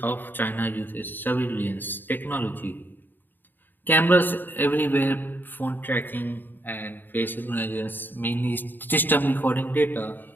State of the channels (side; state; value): right; late; 0.092 ms